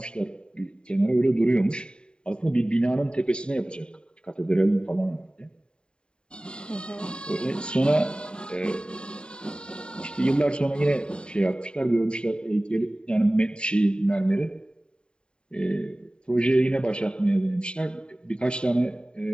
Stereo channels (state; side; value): late; right; 0.050 ms